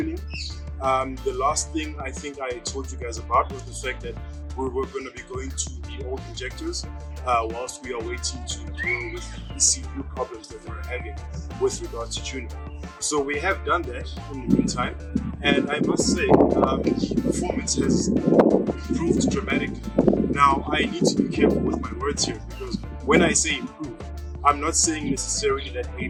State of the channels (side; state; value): both; identical; correlation 1.00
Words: The last thing I think I told you guys about was the fact that we're going to be going to the old injectors whilst we are waiting to deal with the ECU problems that we're having with regards to tuning. So we have done that in the meantime, and I must say performance has improved dramatically. Now I need to be careful with my words here, because when I say improve, I'm not saying necessarily that a